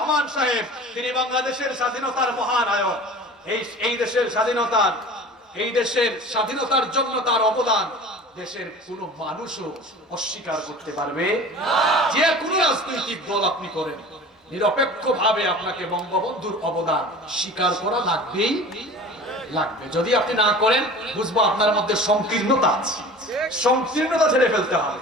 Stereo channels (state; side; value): normal; both; correlation 0.40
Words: সাহেব, তিনি বাংলাদেশের স্বাধীনতার মহানায়ক। এই দেশের স্বাধীনতার জন্য তার অবদান দেশের কোন মানুষও অস্বীকার করতে পারবে না। যে কোনো রাজনৈতিক দল আপনি করেন, নিরপেক্ষভাবে আপনাকে বঙ্গবন্ধুর অবদান স্বীকার করা লাগবেই লাগবে। যদি আপনি না করেন, বুঝবো আপনার মধ্যে সংকীর্ণতা আছে। সংকীর্ণতা ছেড়ে ফেলতে হবে।